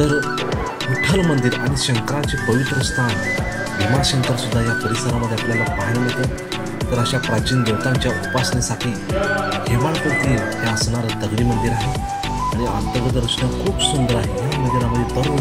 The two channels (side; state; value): both; identical; correlation 1.00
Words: विठ्ठल मंदिर आणि शंकराचे पवित्र स्थान भीमाशंकर सुद्धा या परिसरामध्ये आपल्याला पाहायला मिळतं। तर अशा प्राचीन देवतांच्या उपासनेसाठी हेमाळपंथी हे असणारं दगडी मंदिर आहे आणि अंतर्गत रचना खूप सुंदर आहे। या मंदिरामध्ये